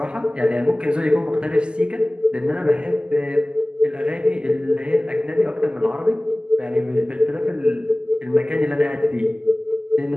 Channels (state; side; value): late; left; 0.048 ms